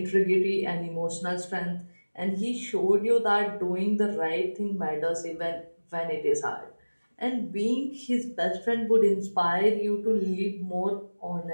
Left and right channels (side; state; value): both; inverted; correlation -1.00